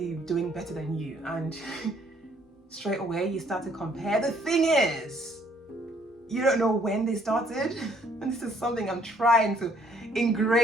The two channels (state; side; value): normal; both; correlation 0.64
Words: doing better than you, and straight away you start to compare. The thing is, you don't know when they started, and this is something I'm trying to